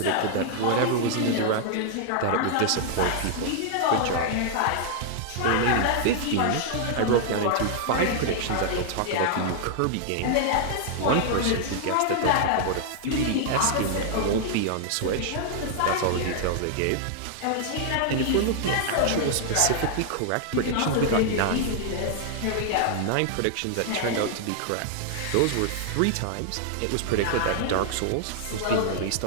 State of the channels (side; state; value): both; different; correlation 0.00